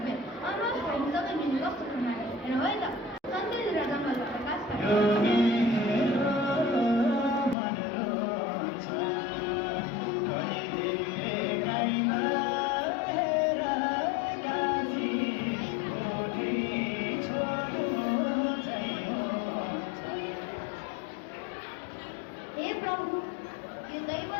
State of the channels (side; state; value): right; drops out; at 7.6 s